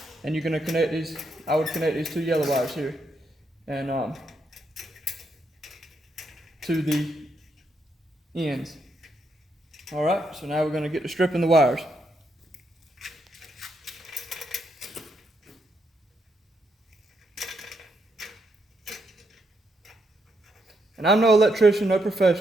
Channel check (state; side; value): normal; both; correlation 0.79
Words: and you're going to connect these. I would connect these 2 yellow wires here, and to the ends. All right, so now we're going to get to stripping the wires. And I'm no electrician, no